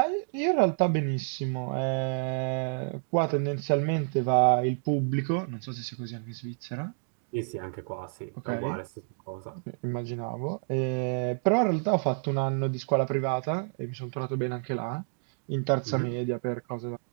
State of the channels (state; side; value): silent; left; digital silence